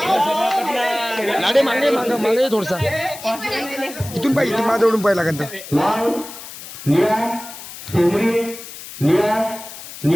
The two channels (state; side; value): noise; left; hiss, 13 dB below the sound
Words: लाडे मागे मागे मागे थोडसा इथून पाहिजे इथून माझ्या ओढून पाहिजे लागेल तर. लाल निळा शेंद्री निळा